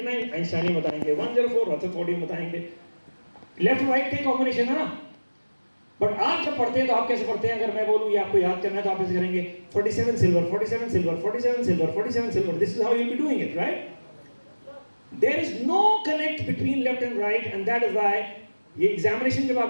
आइंस्टाइन बताएंगे, 104 रदरफोर्ड बताएंगे। लेफ्ट राइट का कॉम्बिनेशन है ना। बट आप जब पढ़ते हैं तो आप कैसे पढ़ते हैं? अगर मैं बोलूं ये आपको याद करना है तो आप ऐसे करेंगे 47 silver, 47 silver, 47 silver, 47 silver. This is how you will be doing it, right? There is no connect between left and right, and that is why ये एग्जामिनेशन जब आप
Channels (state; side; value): inverted; both; correlation -1.00